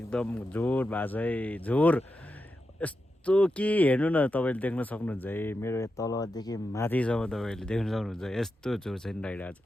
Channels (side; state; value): both; normal; correlation 0.89